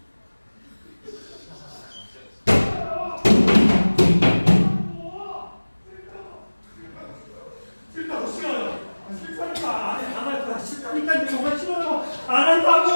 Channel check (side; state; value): both; inverted; correlation -1.00